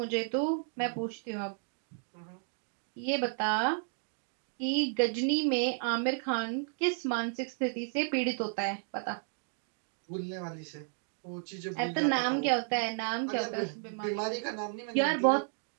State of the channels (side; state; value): left; silent; 56 dB below the other